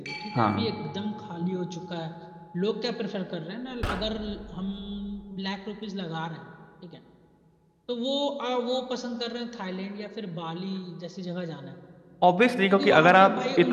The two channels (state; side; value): identical; both; correlation 1.00